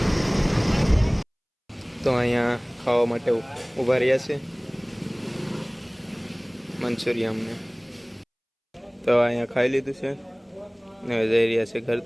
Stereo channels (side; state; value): both; identical; correlation 1.00